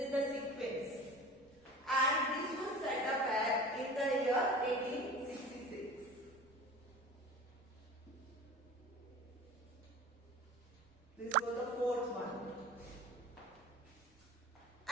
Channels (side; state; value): both; normal; correlation 0.38